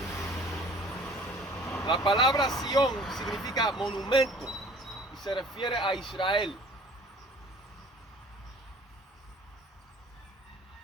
La palabra Sión significa monumento y se refiere a Israel.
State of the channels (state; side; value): normal; both; correlation 0.50